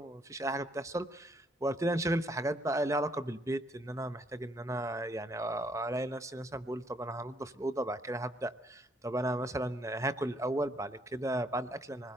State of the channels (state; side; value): normal; both; correlation 0.69